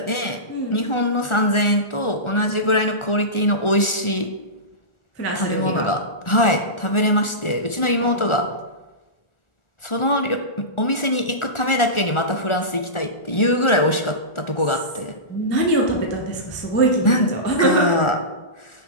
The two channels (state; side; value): late; right; 1.4 ms